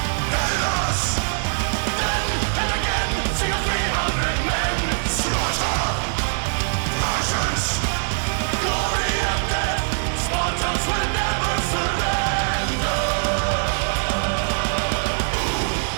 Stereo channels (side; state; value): left; silent; digital silence